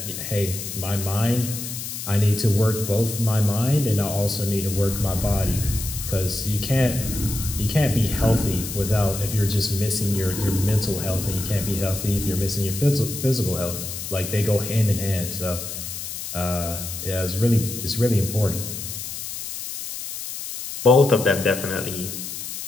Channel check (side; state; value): left; noise; hiss, 7 dB below the sound